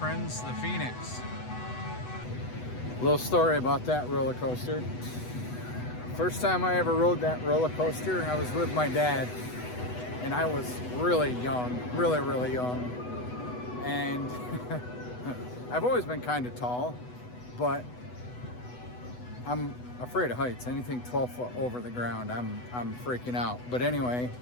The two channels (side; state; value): right; late; 8.1 ms